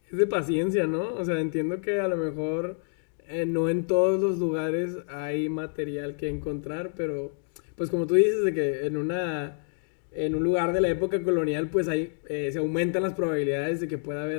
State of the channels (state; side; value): silent; right; 60 dB below the other